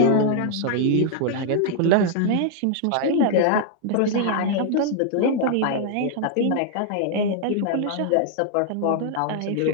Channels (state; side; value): different; both; correlation 0.00